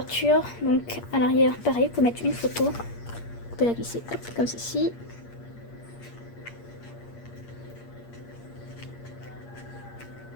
donc à l'arrière, pareil, vous pouvez mettre une photo. Vous pouvez la glisser hop, comme ceci.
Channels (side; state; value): right; late; 8.5 ms